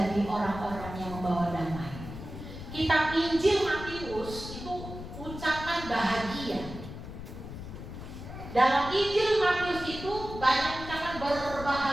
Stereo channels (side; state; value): left; noise; rumble, 10 dB below the sound